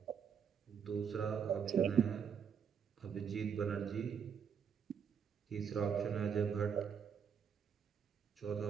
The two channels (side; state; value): left; quieter; 7.3 dB